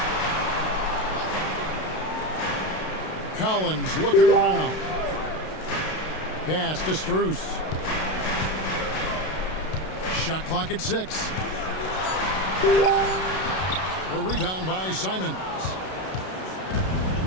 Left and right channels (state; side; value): late; right; 32 ms